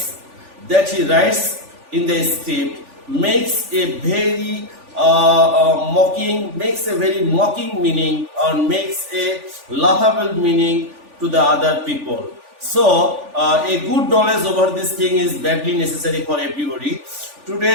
in the script, makes a very mocking meaning, or makes a laughable meaning to the other people. So a good knowledge over this thing is badly necessary for everybody.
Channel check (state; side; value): late; left; 3.4 ms